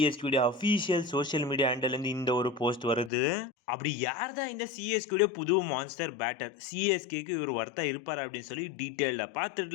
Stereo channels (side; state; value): right; drops out; at 3.1 s